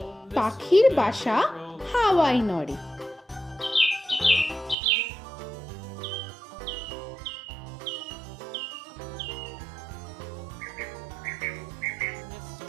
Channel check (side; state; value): left; drops out; at 4.8 s